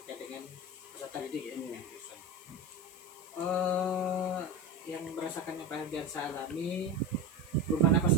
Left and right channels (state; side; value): noise; left; hiss, 21 dB below the sound